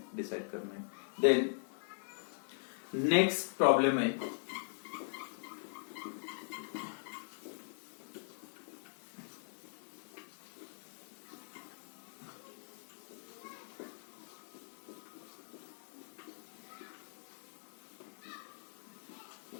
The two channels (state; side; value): silent; right; digital silence